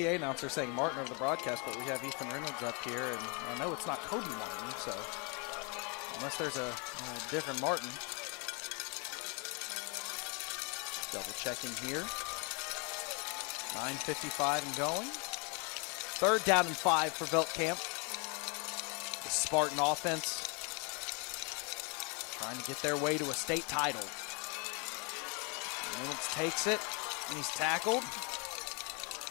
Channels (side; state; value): right; quieter; 33.6 dB